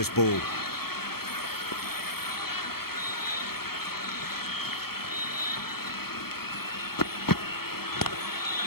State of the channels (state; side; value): late; right; 0.95 ms